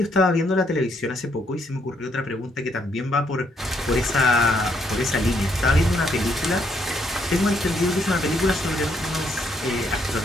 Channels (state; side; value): normal; both; correlation 0.72